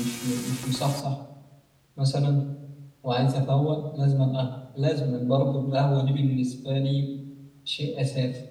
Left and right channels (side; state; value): both; identical; correlation 1.00